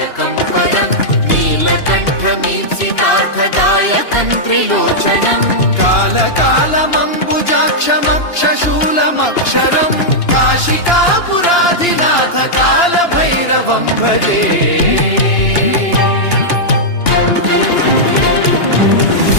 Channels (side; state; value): right; late; 2.8 ms